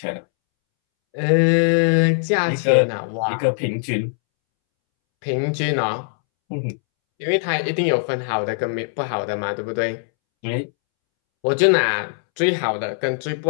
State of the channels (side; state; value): right; silent; 65 dB below the other